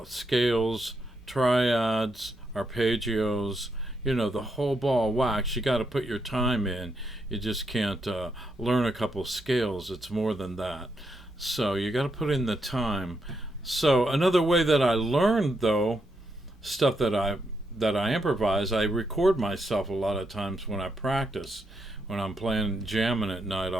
scales, triads, arpeggios, the whole ball of wax. You got to put your time in. You just can't learn a couple scales. It's more than that. So you got to put in the time. So another way that I learned, though, stuff that I improvise, I record myself a lot of times when I practice. When I'm playing jamming at night,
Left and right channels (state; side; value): normal; both; correlation 0.80